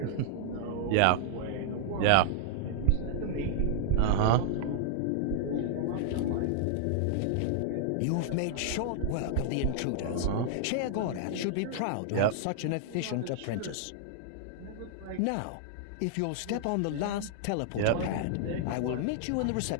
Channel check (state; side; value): different; both; correlation -0.01